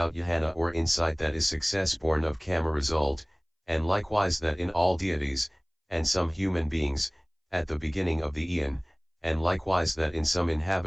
jhana or insight that is success born of karma result, and likewise that in all deities, and some human beings, at the beginning of the eon, and likewise that in some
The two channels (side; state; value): both; identical; correlation 1.00